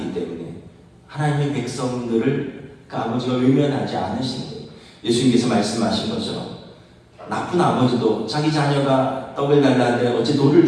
때문에 하나님의 백성들을 그 아버지가 외면하지 않으신 거예요. 예수님께서 말씀하신 것처럼 나쁜 아버지도 자기 자녀가 떡을 달라는데 어찌 돌을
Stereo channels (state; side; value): identical; both; correlation 1.00